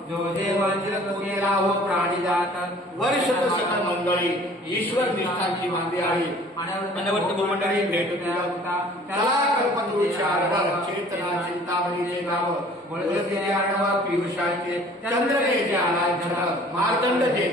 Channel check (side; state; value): both; normal; correlation 0.51